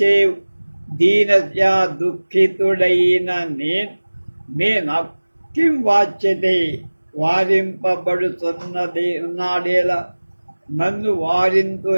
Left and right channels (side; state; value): both; inverted; correlation -1.00